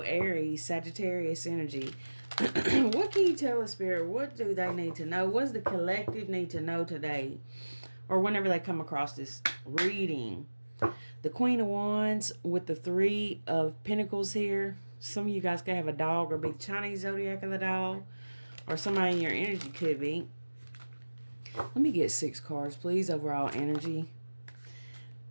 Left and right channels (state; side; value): inverted; both; correlation -1.00